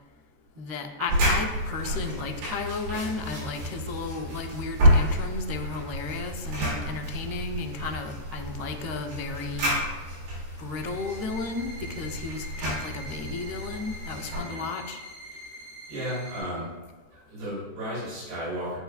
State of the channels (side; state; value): left; late; 14 ms